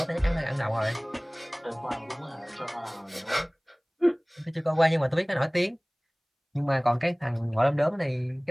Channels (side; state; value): both; identical; correlation 1.00